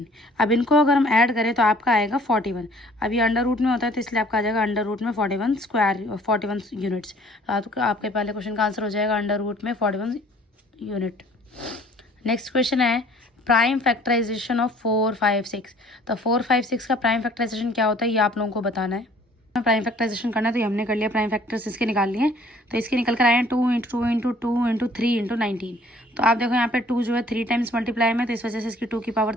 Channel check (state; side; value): normal; both; correlation 0.55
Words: अब इनको अगर हम ऐड करें तो आपका आएगा 41। अब ये अंडर रूट में होता है तो इसलिए आपका आ जाएगा अंडर रूट में 41 स्क्वायर 41 यूनिट्स। तो आपके पहले क्वेश्चन का आंसर हो जाएगा अंडर रूट में 41 यूनिट। नेक्स्ट क्वेश्चन है प्राइम फैक्टराइजेशन ऑफ 4, 5, 6। तो 4, 5, 6 का प्राइम फैक्टराइजेशन क्या होता है ये आप लोगों को बताना है। प्राइम फैक्टराइजेशन करना है तो ये हमने कर लिया, प्राइम फैक्टर्स इसके निकाल लिए। तो इसके निकल कर आए हैं 2 × 2 × 2 × 3 × 19। तो आप देखो यहाँ पे 2 जो है 3 टाइम्स मल्टीप्लाई में, तो इस वजह से इसकी 2 की पावर